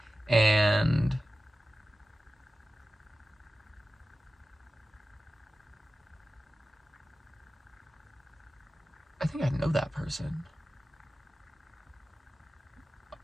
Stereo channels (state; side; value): normal; both; correlation 0.95